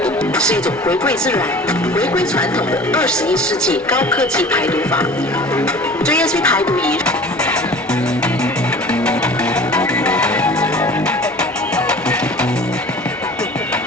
是一种回归自然、回归传统的21世纪高科技排毒法。JSV 排毒仪。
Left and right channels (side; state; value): left; noise; hum, 29 dB below the sound